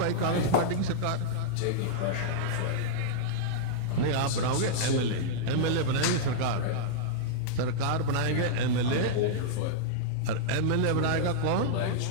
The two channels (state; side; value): different; both; correlation -0.02